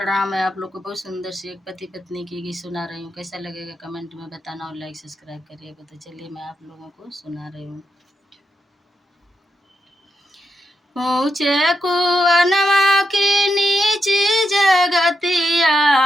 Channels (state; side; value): normal; both; correlation 0.84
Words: मैं आप लोग को बहुत सुंदर सी एक पति पत्नी की गीत सुना रही हूँ। कैसा लगेगा कमेंट में बताना और लाइक सब्सक्राइब करिएगा। तो चलिए मैं आप लोगों को सुना रही हूँ। ऊंचे कुआनवा की नीची जगतिया,